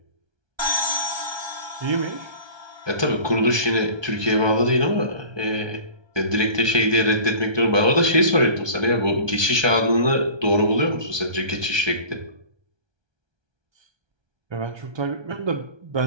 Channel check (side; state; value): left; late; 1.3 ms